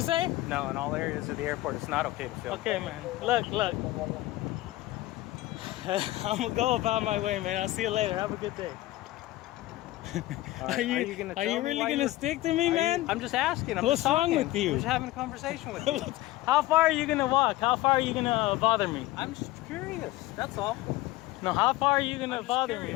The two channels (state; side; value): quieter; right; 17.3 dB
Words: say? No, in all areas of the airport, it's not okay to film. Okay, man. Look. I'm gonna go about my way, man. I'll see you later. Have a good day. All right, Are you really gonna stick to me, man? I'm just asking. I'm What's just talking. wrong with you? I'm just having a conversation with you. How far are you gonna walk? How far are you gonna bother me? I'm just curious. That's all. No, how far are you gonna I'm just bother me,